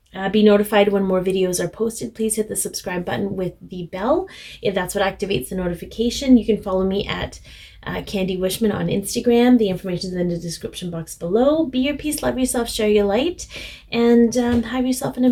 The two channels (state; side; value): identical; both; correlation 1.00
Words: be notified when more videos are posted, please hit the subscribe button with the bell. If that's what activates the notification, you can follow me at Candi Wishman on Instagram. The information is in the description box below. Be your peace, love yourself, share your light, and have yourself an